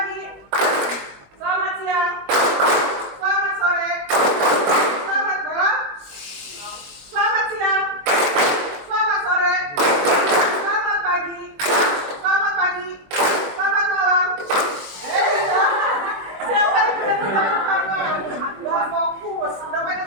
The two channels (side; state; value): left; late; 21 ms